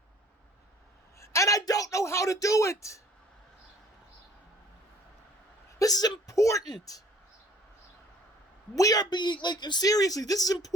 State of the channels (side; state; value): both; normal; correlation 0.55